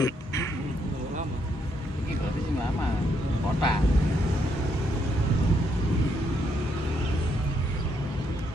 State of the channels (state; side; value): normal; both; correlation 0.75